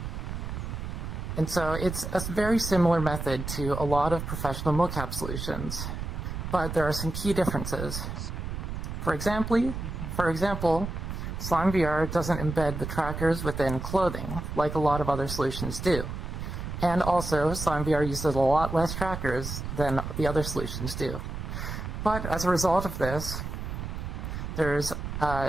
And so it's a very similar method to a lot of professional mocap solutions, but there are some key differences. For example, SlimeVR doesn't embed the trackers within clothing, like a lot of other solutions do. And also, SlimeVR uses a lot less trackers than the other solutions do. But as a result of this, there's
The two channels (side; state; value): right; noise; rumble, 5 dB below the sound